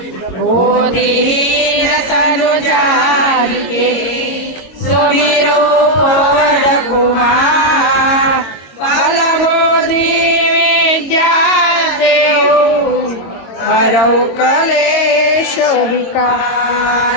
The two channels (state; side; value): late; right; 22 ms